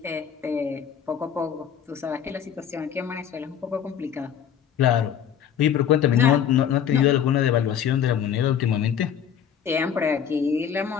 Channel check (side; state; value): right; quieter; 8.6 dB